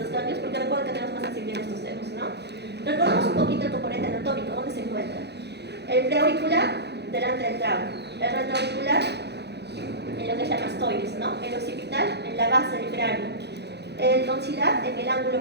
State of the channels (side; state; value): left; late; 0.49 ms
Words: ganglios, porque recuerden que tenemos más sensibilidad en estos dedos, ¿no? Recordemos un poquito el componente anatómico, ¿dónde se encuentra? El preauricular, delante del trago. El retroauricular, en lo que es la mastoides, ¿no? El occipital, en la base del cráneo. El tonsilar, en el